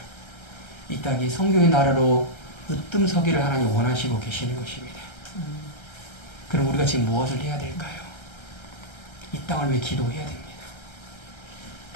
이 땅이 성경의 나라로 으뜸서기를 하나님 원하시고 계시는 것입니다. 그럼 우리가 지금 무엇을 해야 될까요? 이 땅을 위해 기도해야 됩니다.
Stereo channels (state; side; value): late; right; 1.3 ms